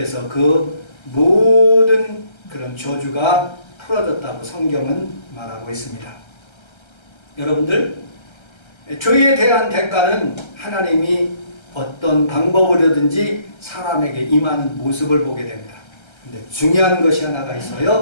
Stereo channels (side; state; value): right; late; 1.3 ms